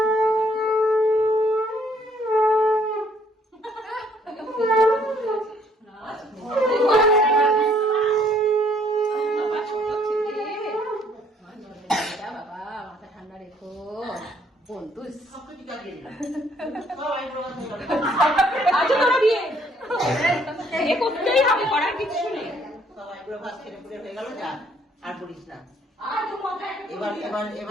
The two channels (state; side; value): normal; both; correlation 0.64